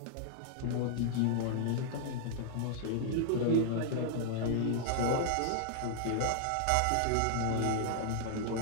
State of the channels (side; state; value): both; different; correlation -0.01